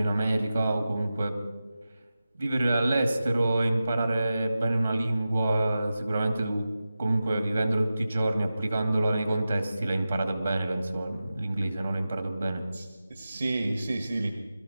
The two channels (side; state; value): both; inverted; correlation -0.94